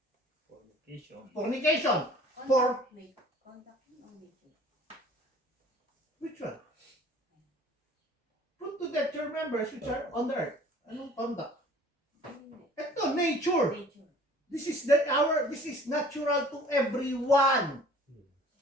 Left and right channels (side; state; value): both; normal; correlation 0.50